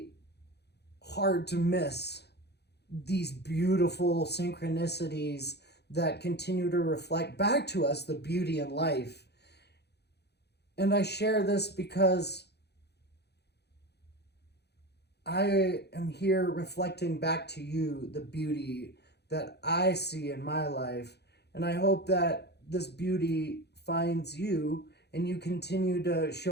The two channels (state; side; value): late; right; 0.48 ms